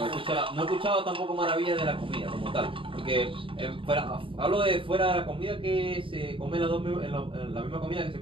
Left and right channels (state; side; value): late; left; 0.25 ms